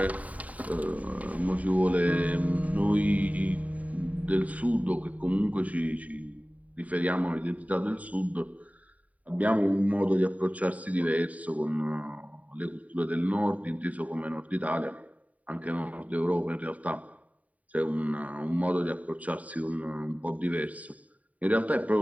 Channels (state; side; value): late; left; 0.070 ms